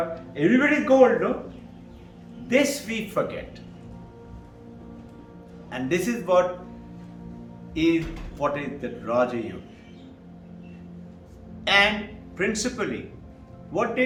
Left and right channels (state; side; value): identical; both; correlation 1.00